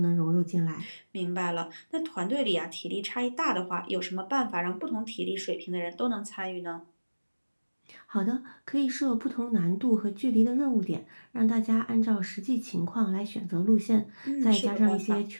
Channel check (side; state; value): both; inverted; correlation -1.00